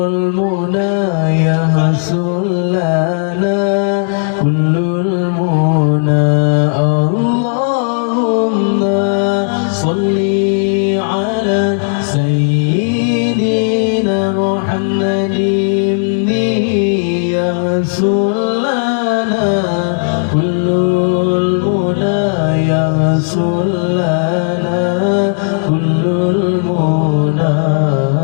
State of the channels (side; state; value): right; silent; digital silence